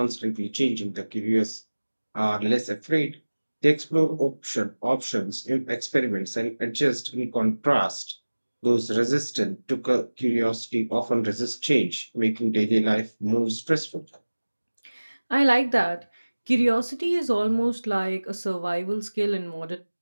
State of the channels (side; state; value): both; inverted; correlation -1.00